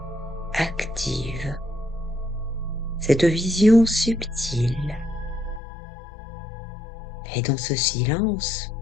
active cette vision subtile. Et dans ce silence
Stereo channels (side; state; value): right; drops out; at 5.6 s